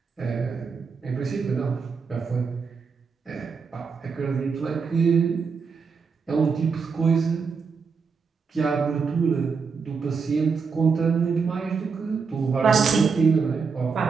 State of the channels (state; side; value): quieter; left; 5.3 dB